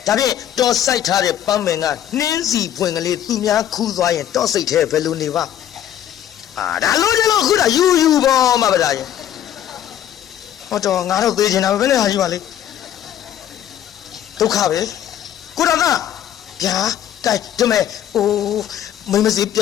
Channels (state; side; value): quieter; right; 11.0 dB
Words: ဒါဖြင့်တော့စိုက်ထားတဲ့ပန်းပင်ကနှင်းစီပွင့်ကလေးသူများခူးသွားရင်တော့စိတ်ထဲဘယ်လိုနေပါဒါလို့ကျလို့ခုတာယူဗောမဗရာရဲ့ဟောတော့ငါတော့သေးချင်တာပဲနဲ့ဟာကြီးပါလေဒုက္ခပဲကိုတော်ကဗျာကဲဒီမဲ့မိမစီပြ